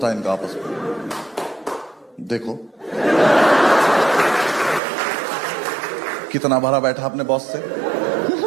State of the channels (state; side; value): drops out; left; at 4.8 s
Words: है इनका आपस में। देखो कितना भरा बैठा अपने बॉस से।